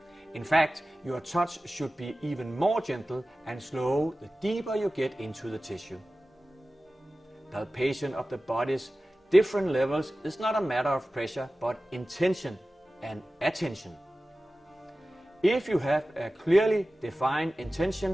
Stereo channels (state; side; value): normal; both; correlation 0.96